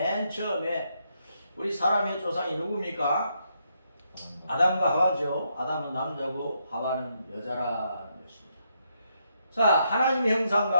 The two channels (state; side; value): inverted; both; correlation -0.78